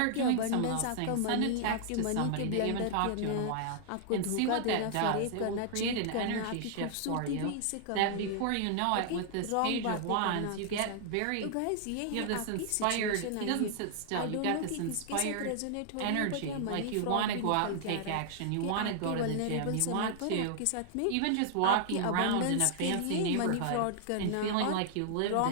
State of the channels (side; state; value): both; different; correlation -0.01